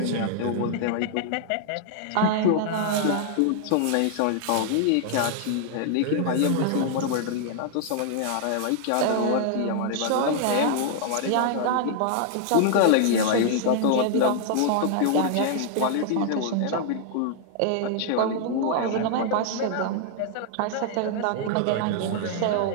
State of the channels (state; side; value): different; both; correlation 0.00